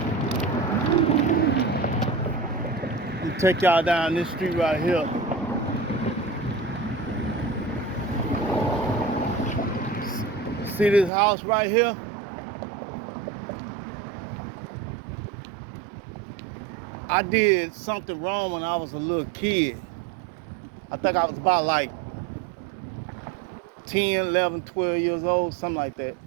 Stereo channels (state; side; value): drops out; left; at 11.1 s